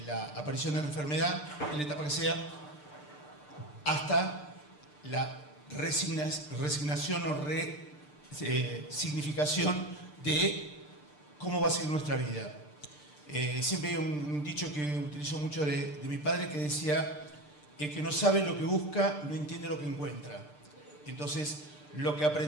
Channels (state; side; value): late; right; 6.7 ms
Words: la aparición de la enfermedad, en la etapa que sea, hasta la resignación o significación de cómo va a ser nuestra vida. Siempre hay un dicho que utilizo mucho de mi padre que decía: el que no sabe lo que busca no entiende lo que encuentra. Entonces, lo que